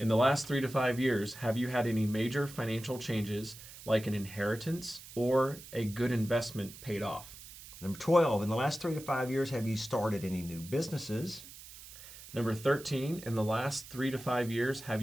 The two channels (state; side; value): noise; right; hiss, 16 dB below the sound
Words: the last 3 to 5 years, have you had any major financial changes like an inheritance or a good investment paid off? Number 12, in the last 3 to 5 years, have you started any new businesses? Number 13, in the last 3 to 5 years, have